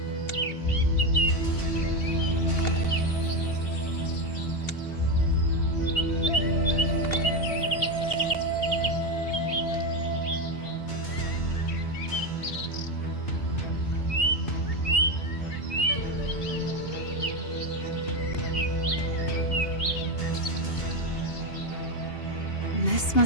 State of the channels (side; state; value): right; late; 2.8 ms